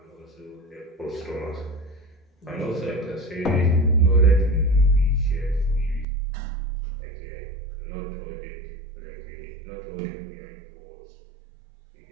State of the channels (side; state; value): left; drops out; at 6.1 s